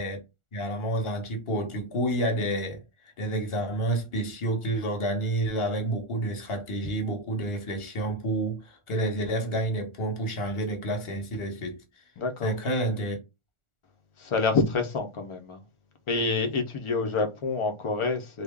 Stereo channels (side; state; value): right; late; 1.4 ms